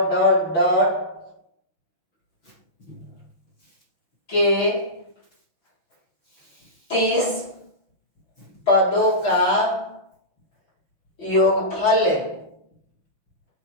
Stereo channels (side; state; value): right; late; 5.9 ms